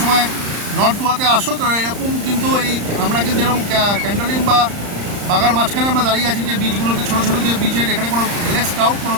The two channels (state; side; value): late; left; 35 ms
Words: সময় নর্থ গোয়াতে আসো, তো এরকম কিন্তু আমরা কিন্তু যেরকম ক্যান্ডলিং বা বাগার মাঝখানে আমরা দাঁড়িয়ে আছি, যে বিচগুলোতে ছোটো ছোটো যে বিচের, এখানে কোনো কোনো